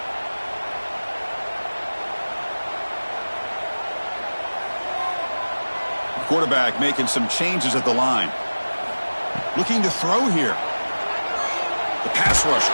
Quarterback making some changes at the line. Looking to throw here. The pass rush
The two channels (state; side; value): inverted; both; correlation -1.00